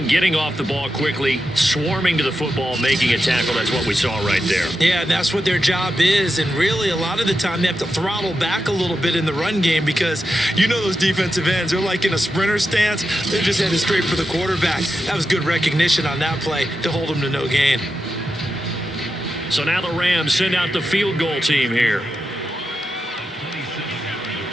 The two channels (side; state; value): both; normal; correlation 0.88